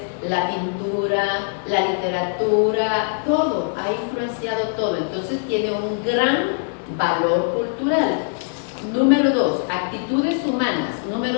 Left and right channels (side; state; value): right; silent; 56 dB below the other